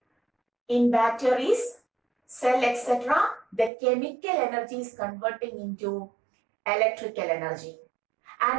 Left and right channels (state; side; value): drops out; left; at 3.7 s